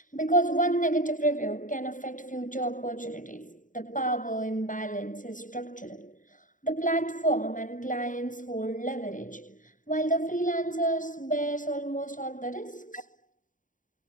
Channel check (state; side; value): late; right; 0.38 ms